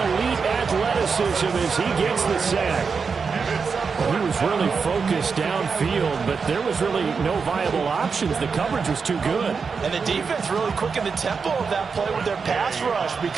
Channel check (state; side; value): quieter; left; 5.4 dB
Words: elite athleticism as he gets the sack. He was really focused downfield, but there was really no viable options. The coverage was too good. And the defense really quickened the tempo of that play with their pass rush